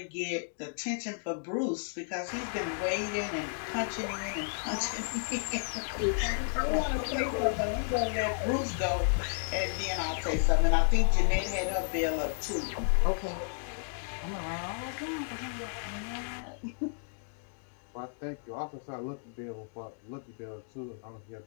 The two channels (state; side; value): silent; right; digital silence